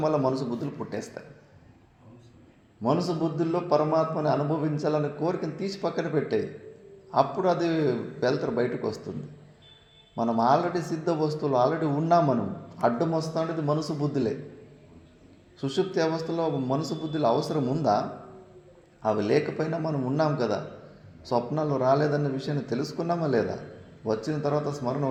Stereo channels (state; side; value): identical; both; correlation 1.00